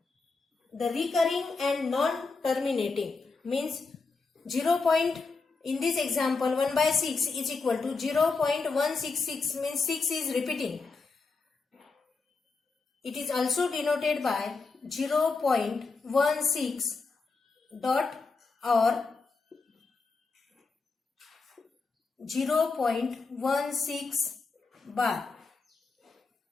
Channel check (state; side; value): quieter; right; 4.3 dB